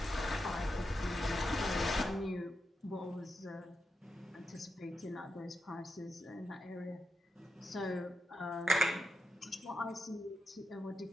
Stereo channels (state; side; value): normal; both; correlation 0.87